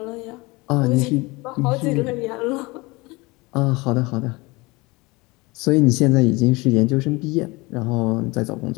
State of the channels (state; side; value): quieter; right; 24.1 dB